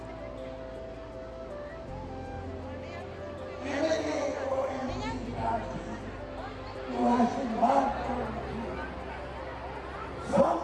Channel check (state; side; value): identical; both; correlation 1.00